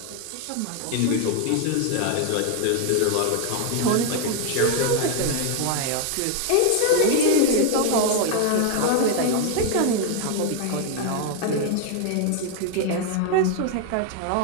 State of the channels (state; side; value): different; both; correlation 0.01